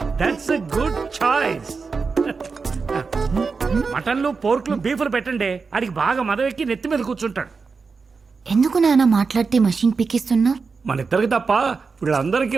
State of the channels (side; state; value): left; quieter; 4.8 dB